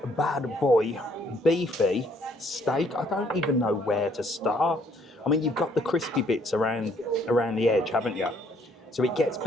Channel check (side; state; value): both; normal; correlation 0.65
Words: bad boy beefy steak. I don't even know where to start. I mean, you've got the crispy bits around the edge, haven't you? So it gets